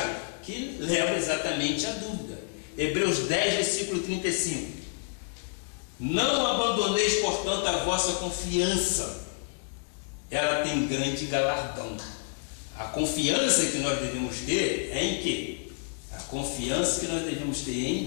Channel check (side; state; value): right; silent; 59 dB below the other